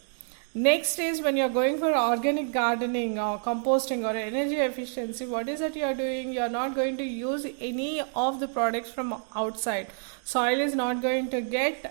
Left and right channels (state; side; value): silent; left; digital silence